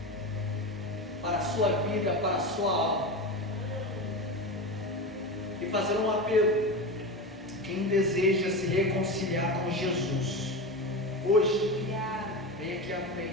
para a sua vida, para a sua alma, e fazer um apelo. Quem deseja se reconciliar com Jesus, hoje, vem aqui à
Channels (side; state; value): both; normal; correlation 0.23